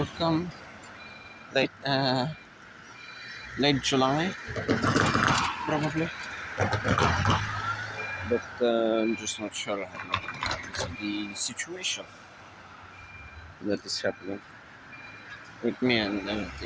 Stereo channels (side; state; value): both; identical; correlation 1.00